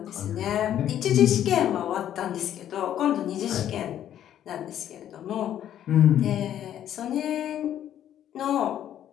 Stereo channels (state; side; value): quieter; right; 10.9 dB